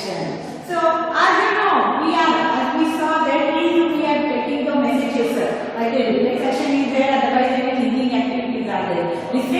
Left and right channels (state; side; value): identical; both; correlation 1.00